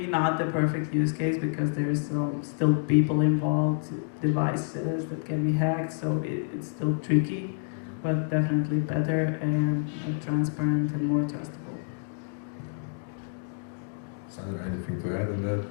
not the perfect use case because there's still people involved, devices that can be hacked, so it's still tricky, but definitely better and more transparent and more trustable. Sandra, anything to add on that?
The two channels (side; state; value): right; silent; digital silence